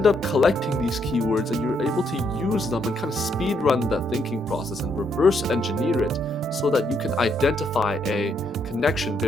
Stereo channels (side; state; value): both; normal; correlation 0.74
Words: up collecting these keywords and you're able to use them and kind of speed run that thinking process and reverse engineer it so that you can identify a connection